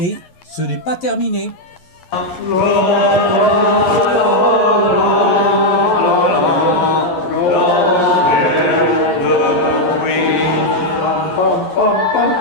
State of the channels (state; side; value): late; right; 11 ms